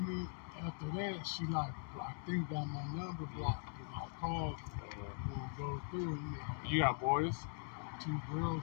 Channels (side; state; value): right; silent; 50 dB below the other